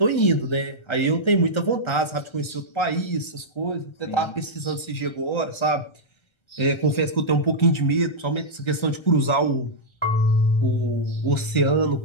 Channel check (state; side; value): late; right; 1.3 ms